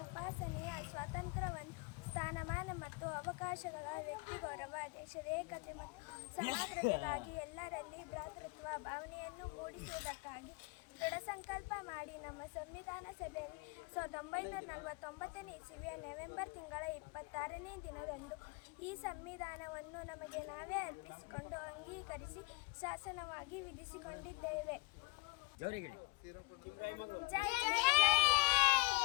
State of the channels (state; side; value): quieter; right; 26.0 dB